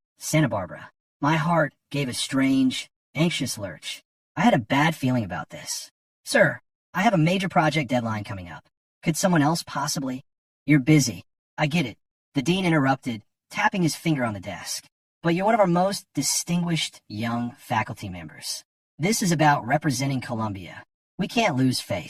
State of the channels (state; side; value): identical; both; correlation 1.00